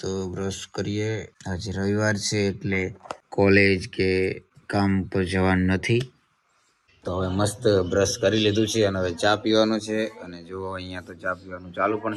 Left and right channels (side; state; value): both; identical; correlation 1.00